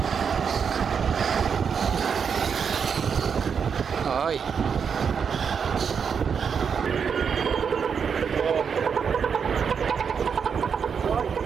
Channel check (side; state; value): left; quieter; 6.6 dB